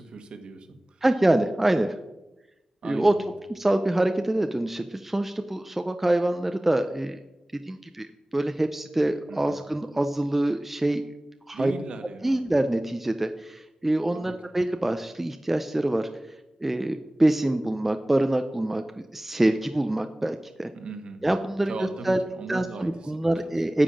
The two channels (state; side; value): normal; both; correlation 0.98